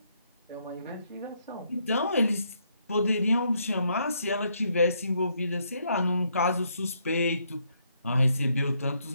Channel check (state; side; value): inverted; both; correlation -0.74